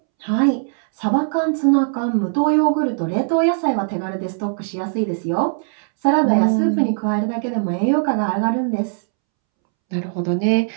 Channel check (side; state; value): left; silent; 66 dB below the other